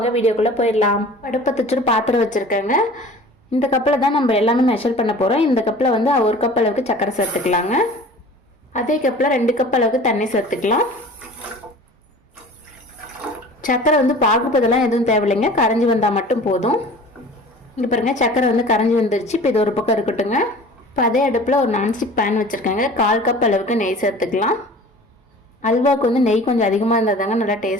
வீடியோக்குள்ளே போயிடலாம். அடுப்பை தச்சுட்டு பாத்திரம் வச்சுருக்கேங்க. இந்த கப்பில் தான் நம்ம எல்லாமே மெஷர் பண்ண போகிறோம். இந்த கப்பில் வந்து 1 கப் அளவுக்கு சக்கரை சேர்த்துக்கலாங்க. அதே கப்பில் 2 கப் அளவுக்கு தண்ணி சேர்த்துக்கலாம். சக்கரை வந்து பாகுபதெல்லாம் எதுவும் தேவையில்லைங்க, கரைஞ்சி வந்தால் மட்டும் போதும். இங்கே பாருங்க, சக்கரை வந்து கரைஞ்சி வந்துருச்சு. இப்போ இது ஒரு பக்கம் இருக்கட்டுங்க. இப்போ அதே அடுப்பில் ஒரு நான்ஸ்டிக் பேன் வச்சுருக்காங்க. 1/4 கப் அளவுக்கு நெய் சேர்த்துக்கலாம். அல்வாவுக்கு வந்து நெய் கொஞ்சம் அதிகமாக இருந்தால் தாங்க நல்லா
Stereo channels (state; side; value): normal; both; correlation 0.43